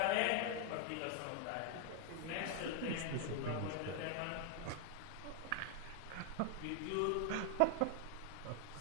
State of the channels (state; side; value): different; both; correlation 0.00